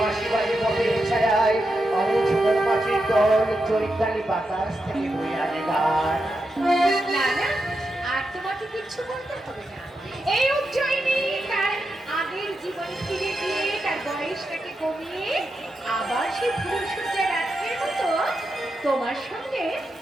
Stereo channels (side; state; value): both; normal; correlation 0.87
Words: বাড়ি পথের ছায়ায় অমুঝুর মাছের দল চৈতালি বাতাস থেকে বয়ে আনে গান। না না, আর তোমাকে কিচ্ছু বলতে হবে না। এই উজ্জয়িনী তার আগের জীবন ফিরে গিয়ে তার বয়সটাকে কমিয়ে আবার সেই ফুলসজ্জা রাত্রের মতো তোমার সঙ্গে